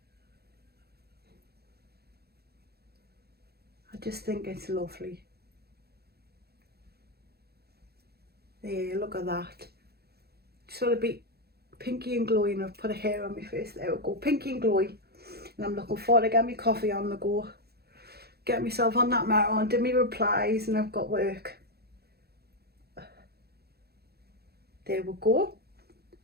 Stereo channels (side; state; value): left; late; 0.46 ms